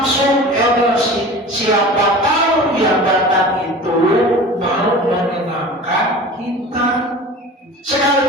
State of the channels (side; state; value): both; normal; correlation 0.37